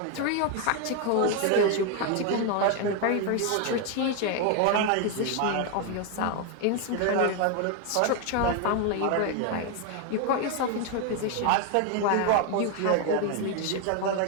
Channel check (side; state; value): both; different; correlation 0.01